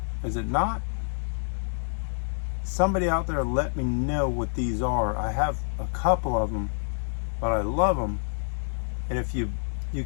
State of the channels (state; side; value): silent; right; digital silence